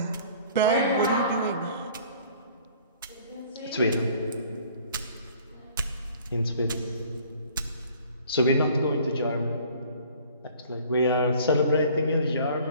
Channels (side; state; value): both; inverted; correlation -0.52